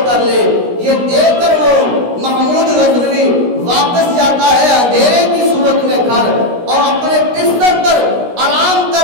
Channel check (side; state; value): left; late; 16 ms